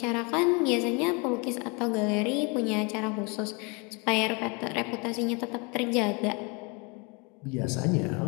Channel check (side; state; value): right; quieter; 30.7 dB